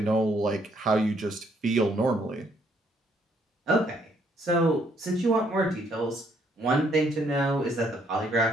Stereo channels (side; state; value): both; normal; correlation 0.69